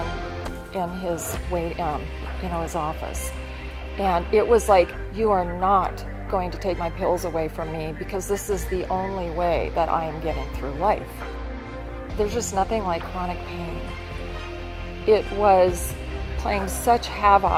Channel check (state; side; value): identical; both; correlation 1.00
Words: in his his office. And it was like, you are not going to take my pills away from me, because this is the only way that I am getting through life. There's just nothing like chronic pain. It was playing such